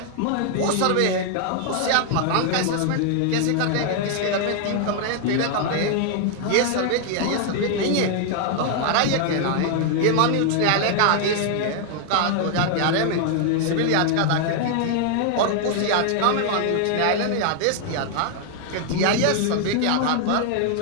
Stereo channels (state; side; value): different; both; correlation 0.00